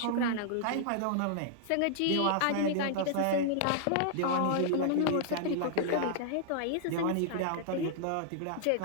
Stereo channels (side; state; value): both; different; correlation -0.01